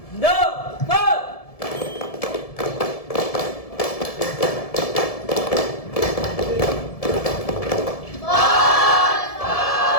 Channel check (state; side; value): late; right; 1.7 ms